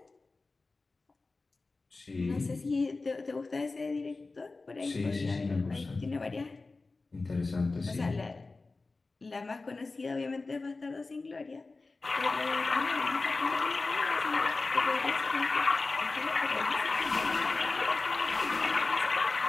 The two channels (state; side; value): quieter; right; 3.6 dB